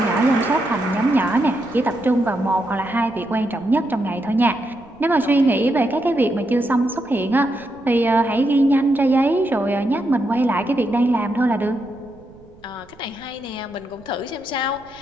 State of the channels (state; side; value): noise; right; rumble, 26 dB below the sound